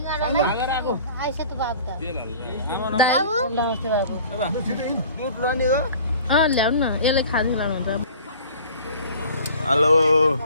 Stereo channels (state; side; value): inverted; both; correlation -0.47